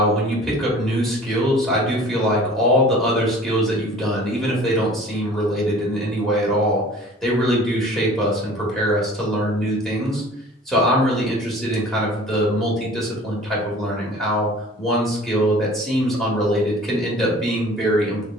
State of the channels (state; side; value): normal; both; correlation 0.46